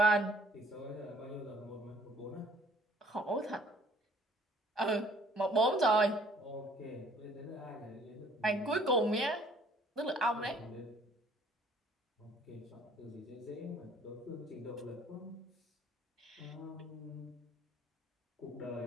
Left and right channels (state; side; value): normal; both; correlation 0.58